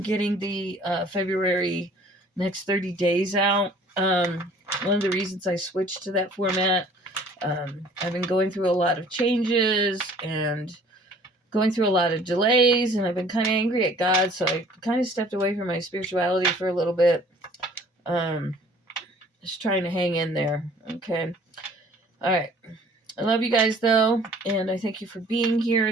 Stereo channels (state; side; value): normal; both; correlation 0.53